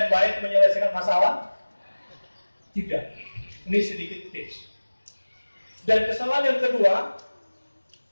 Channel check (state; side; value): inverted; both; correlation -1.00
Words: yang baik menyelesaikan masalah? Tidak. Ini sedikit tips. Dan kesalahan yang kedua,